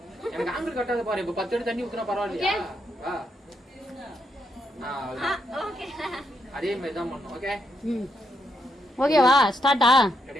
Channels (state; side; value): normal; both; correlation 0.79